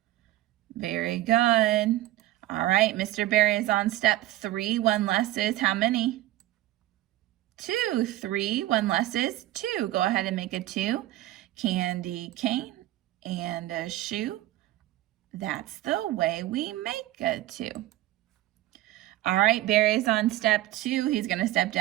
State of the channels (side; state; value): left; quieter; 15.5 dB